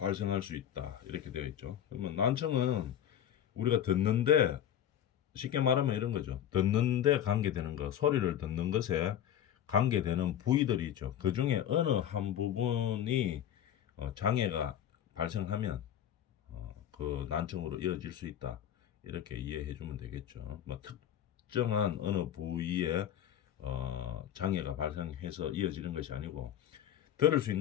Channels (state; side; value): quieter; right; 10.3 dB